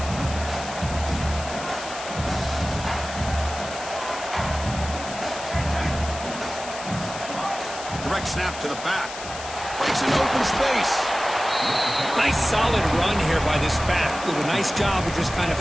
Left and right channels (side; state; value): left; noise; hiss, 11 dB below the sound